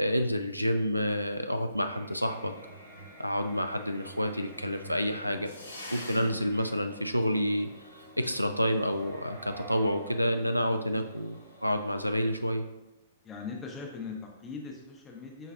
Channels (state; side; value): inverted; both; correlation -0.85